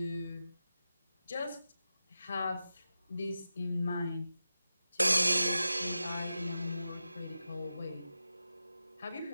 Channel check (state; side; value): inverted; both; correlation -0.92